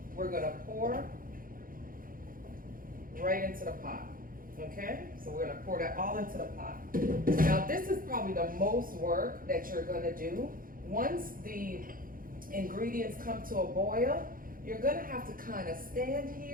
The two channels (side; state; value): left; late; 0.41 ms